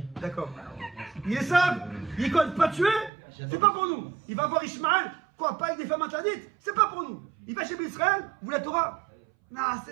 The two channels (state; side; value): drops out; left; at 3.1 s